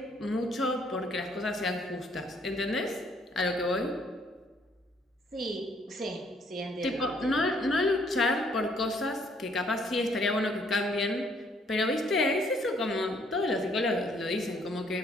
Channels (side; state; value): both; normal; correlation 0.66